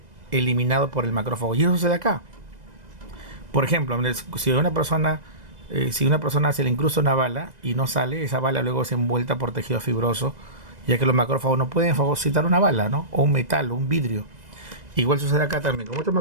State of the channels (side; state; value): left; late; 2.0 ms